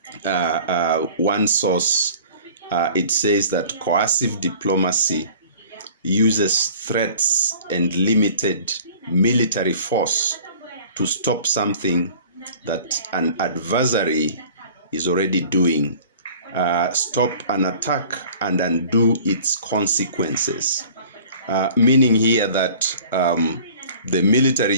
one source, it says that coercive diplomacy uses threats and limited military force to stop something that an adversary is already doing, stop an attack and undo its consequences. Meaning here that the military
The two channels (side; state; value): both; inverted; correlation -0.47